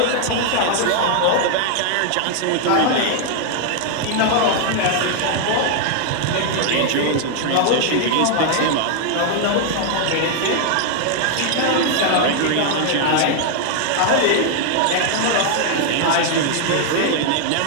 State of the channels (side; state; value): both; different; correlation 0.00